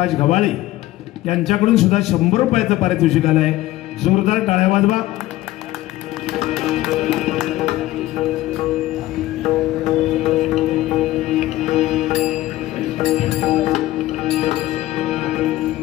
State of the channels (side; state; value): right; quieter; 16.2 dB